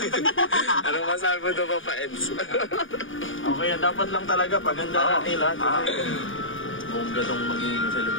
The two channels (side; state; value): right; late; 0.57 ms